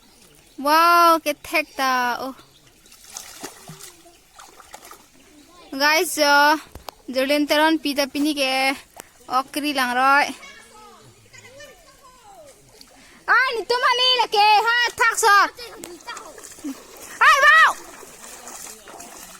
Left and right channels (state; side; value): identical; both; correlation 1.00